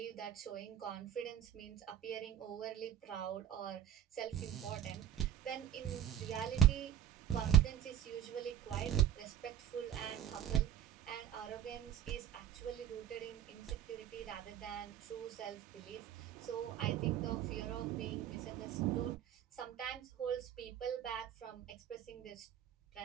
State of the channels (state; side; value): quieter; left; 10.8 dB